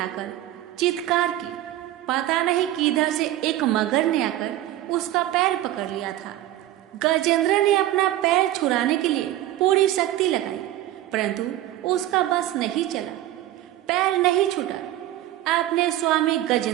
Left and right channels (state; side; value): quieter; left; 14.1 dB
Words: चित्कार की। पता नहीं किधर से एक मगर ने आकर उसका पैर पकड़ लिया था। गजेंद्र ने अपना पैर छुड़ाने के लिए पूरी शक्ति लगाई, परंतु उसका बस नहीं चला, पैर नहीं छूटा। अपने स्वामी